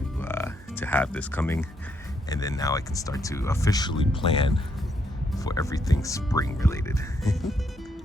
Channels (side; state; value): both; normal; correlation 0.75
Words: have this coming, and then now I can start to officially plan for everything spring related.